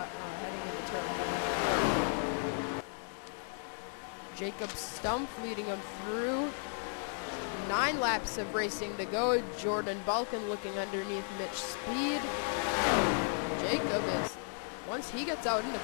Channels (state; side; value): silent; right; 55 dB below the other